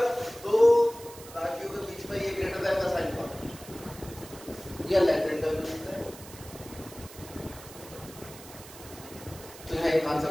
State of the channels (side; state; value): right; noise; hiss, 17 dB below the sound